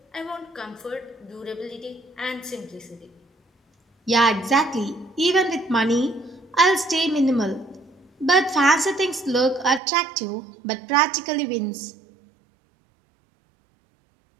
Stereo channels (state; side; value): drops out; left; at 9.8 s